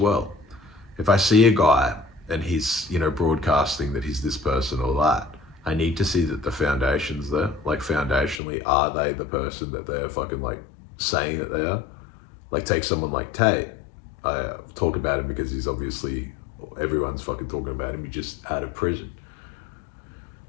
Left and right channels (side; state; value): right; drops out; at 8.4 s